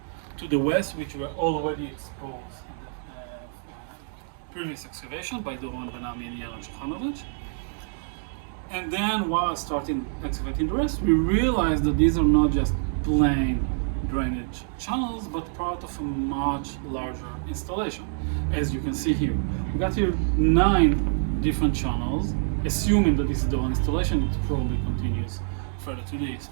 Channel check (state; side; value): silent; left; digital silence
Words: to the west, which were already exposed in the previous excavation by Doron Ben-Ami and Yaron Shukhanovich. And then, while starting excavating the rest, we realized that these are not just plain drainage channels, but part of a much larger installation. As you can see here, we got here 9 different channels. Assuming that this is the one installation, it probably continues further to the east.